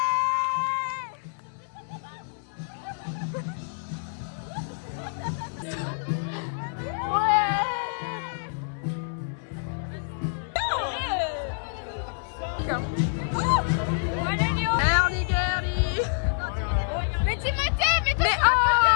Mais Timothée, mais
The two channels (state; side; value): silent; right; digital silence